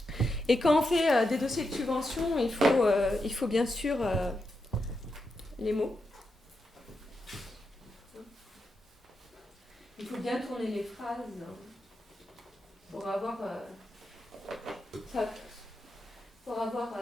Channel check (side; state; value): both; normal; correlation 0.86